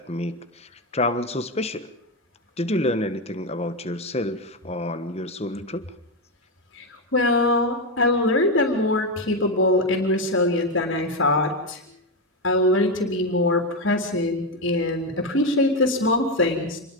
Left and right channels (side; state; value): both; normal; correlation 0.09